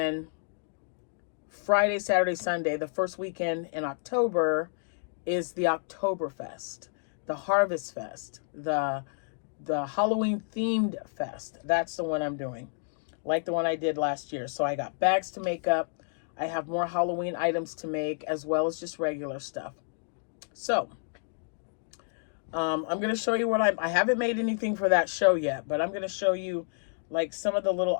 Friday, Saturday, Sunday, the first weekend in October is the Oktoberfest, the Harvest Fest, the Halloween themed fest. That's the one I'm doing, like the one I did last year. So I got bags to make up. I have more Halloween items to make, as well as just regular stuff. So I'm going to show you what I haven't made anything for that show yet, but I'm going to show you like some of the little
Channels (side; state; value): right; silent; digital silence